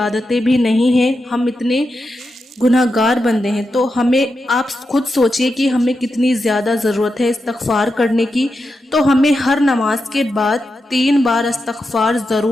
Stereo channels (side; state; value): both; normal; correlation 0.88